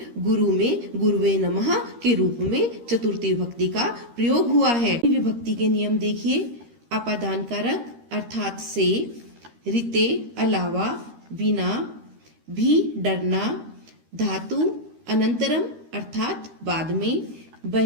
गुरु में गुरुवे नमः के रूप में चतुर्थी विभक्ति का प्रयोग हुआ है। विभक्ति के नियम देखिए। अपादान कारक अर्थात से, रीते अलावा, बिना, भी डरना, धातु अनंतरम अर्थात बाद में,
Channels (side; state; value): left; late; 13 ms